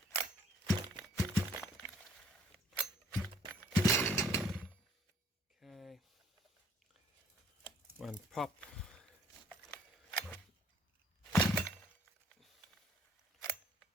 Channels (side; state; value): both; normal; correlation 0.59